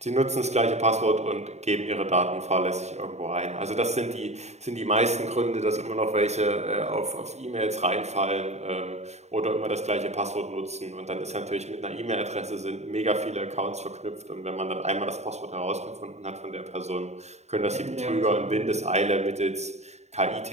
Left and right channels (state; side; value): late; left; 0.32 ms